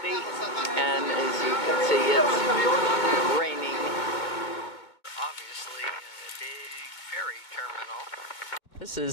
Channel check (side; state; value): right; late; 2.2 ms